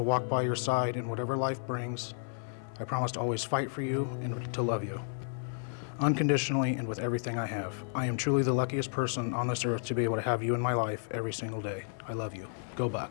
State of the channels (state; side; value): silent; right; 56 dB below the other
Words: walk by your side in whatever life brings. I promise to always fight for you and to love you, unconditionally and with everything I have. I am truly the luckiest person on this earth to be able to have you in my life every single day. I love you. Go